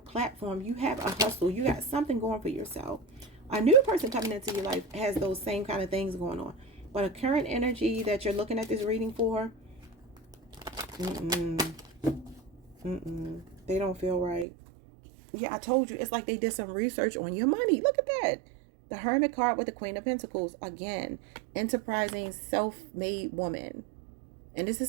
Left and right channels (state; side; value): drops out; left; at 14.5 s